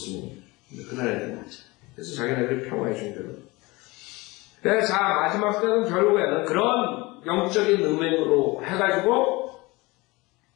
그 나라에는 가짜. 그래서 자기네들이 평화의 종교로. 자, 마지막 때는 결국에는 그런 영적인 음행으로 해가지고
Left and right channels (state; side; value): quieter; right; 23.1 dB